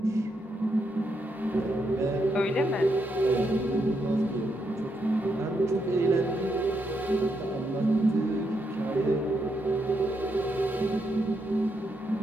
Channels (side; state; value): both; normal; correlation 0.80